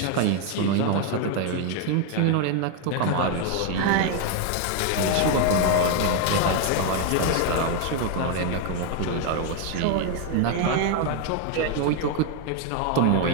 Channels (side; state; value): both; different; correlation 0.01